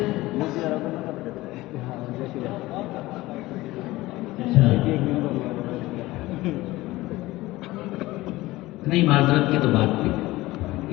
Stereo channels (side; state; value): right; quieter; 18.6 dB